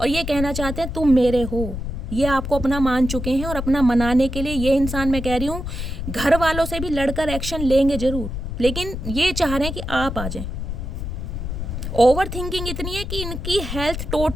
और ये कहना चाहते हैं तुम मेरे हो। ये आपको अपना मान चुके हैं और अपना मनाने के लिए ये इंसान, मैं कह रही हूँ, घर वालों से भी लड़कर एक्शन लेंगे ज़रूर, लेकिन ये चाह रहे हैं कि आप आ जाएं। ओवर थिंकिंग इतनी है कि इनकी हेल्थ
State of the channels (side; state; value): left; noise; rumble, 5 dB below the sound